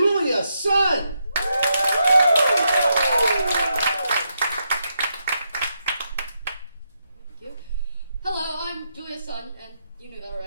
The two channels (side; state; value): both; inverted; correlation -0.82